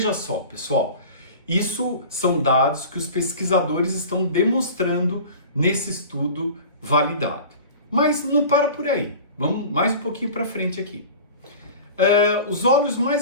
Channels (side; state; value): both; inverted; correlation -0.38